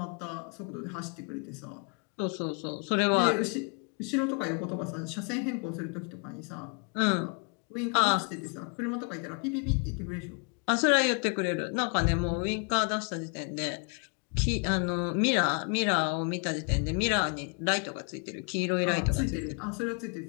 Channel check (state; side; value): quieter; right; 37.6 dB